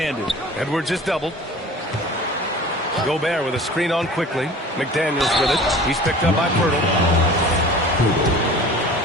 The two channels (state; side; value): normal; both; correlation 0.42